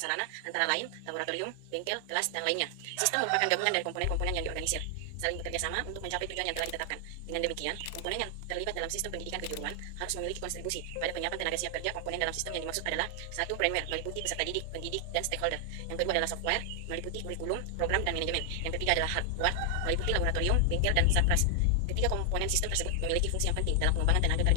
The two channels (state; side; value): different; both; correlation 0.00